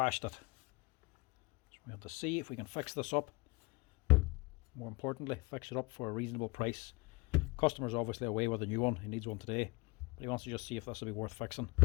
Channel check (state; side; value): quieter; right; 24.9 dB